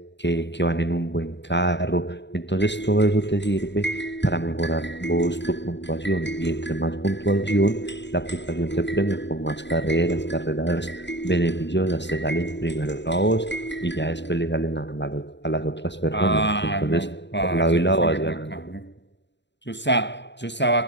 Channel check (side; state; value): right; late; 0.52 ms